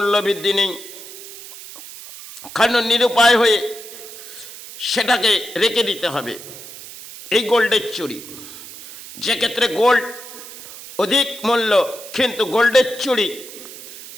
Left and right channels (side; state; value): right; noise; hiss, 14 dB below the sound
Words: বৃদ্ধি নেই, কারণ নিরুপায় হয়ে সেটাকে রেখে দিতে হবে। এই গোল্ডের চুড়ি, যে ক্ষেত্রে গোল্ড অধিক মূল্য, কিন্তু গোল্ডের চুড়ি